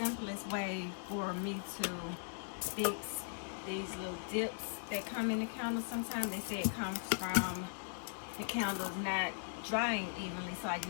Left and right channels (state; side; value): silent; right; digital silence